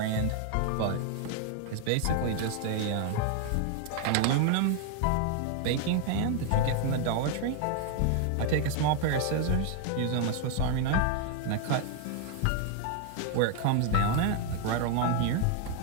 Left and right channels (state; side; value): different; both; correlation 0.00